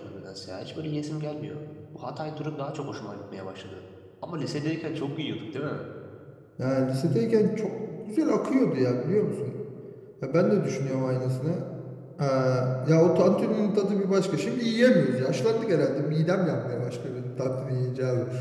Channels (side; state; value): both; identical; correlation 1.00